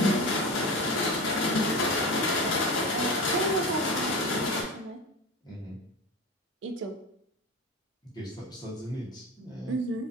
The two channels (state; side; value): normal; both; correlation 0.27